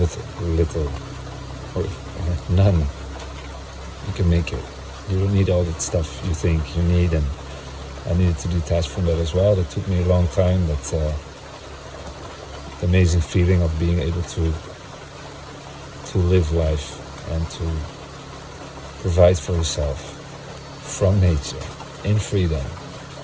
little or none, you can make it. You don't need all that stuff you think you need, and I needed to detach from that as well. That took me a long time, but the amazing feeling of being able to live life and to provide for yourself from nature, in freedom.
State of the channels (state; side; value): identical; both; correlation 1.00